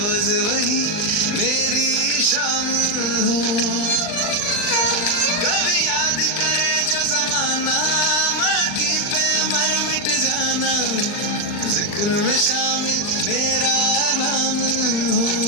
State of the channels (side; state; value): right; late; 39 ms